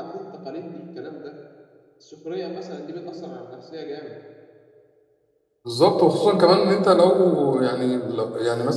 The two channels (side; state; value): both; identical; correlation 1.00